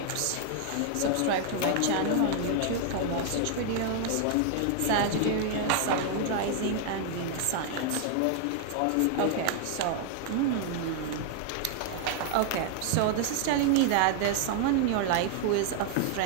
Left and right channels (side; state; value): both; different; correlation 0.00